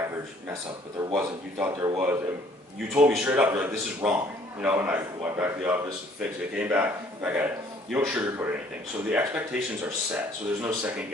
mess up, but there wasn't. You thought there was. And you told me straight up, you're like, this is wrong. You know, and I went back to the office, fixed it, came back at it. You don't sugarcoat anything. So the expectations are set. So there's no second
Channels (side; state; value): both; normal; correlation 0.59